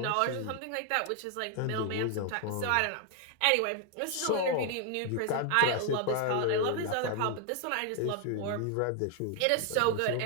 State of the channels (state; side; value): different; both; correlation 0.00